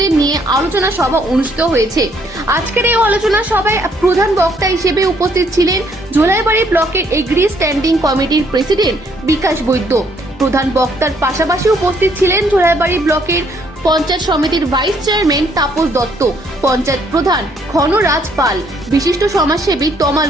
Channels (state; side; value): normal; both; correlation 0.67